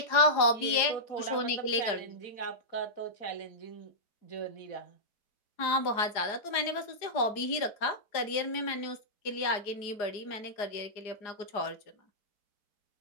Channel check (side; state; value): right; late; 4.8 ms